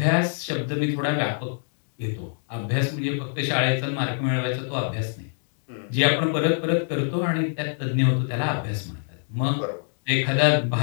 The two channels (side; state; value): right; silent; digital silence